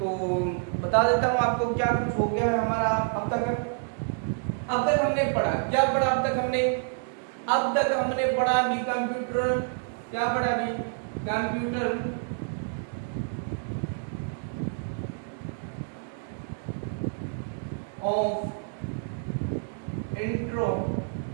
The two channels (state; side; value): silent; left; 59 dB below the other